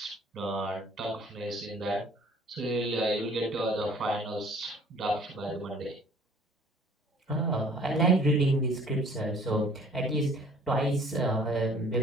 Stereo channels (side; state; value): both; normal; correlation 0.53